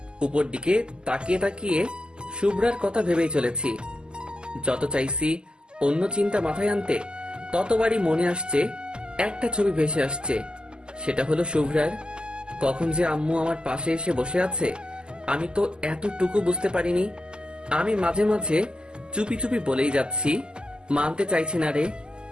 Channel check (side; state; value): left; late; 0.047 ms